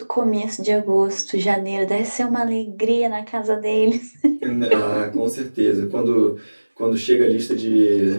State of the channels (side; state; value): both; inverted; correlation -1.00